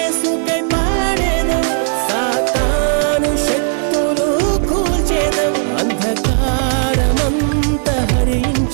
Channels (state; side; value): silent; left; digital silence